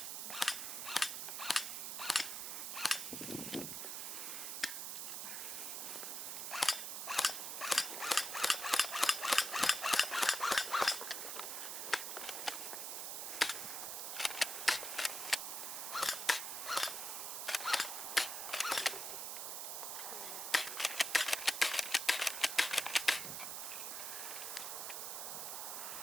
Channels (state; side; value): noise; right; hiss, 4 dB below the sound